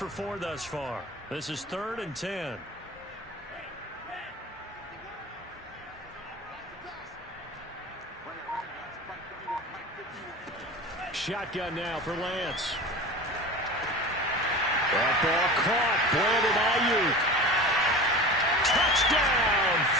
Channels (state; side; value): normal; both; correlation 0.33